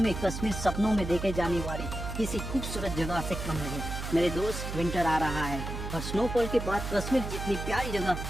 कश्मीर सपनों में देखे जाने वाली किसी खूबसूरत जगह से कम नहीं। मेरे दोस्त, विंटर आ रहा है और स्नोफॉल के बाद कश्मीर जितनी प्यारी जगह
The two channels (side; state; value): right; noise; hum, 6 dB below the sound